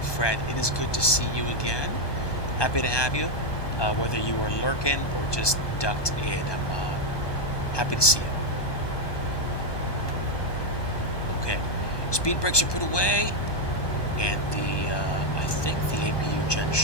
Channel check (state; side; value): late; right; 1.2 ms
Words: Fred. It is good to see you again. Happy to have you. Whether you are lurking or just ducked in, I'm happy to see you. Okay. Speed brakes are put away, and I think the APU gen